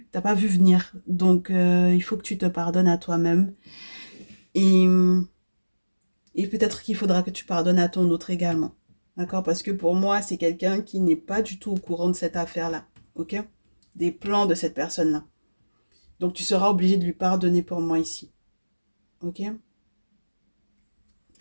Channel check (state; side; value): inverted; both; correlation -1.00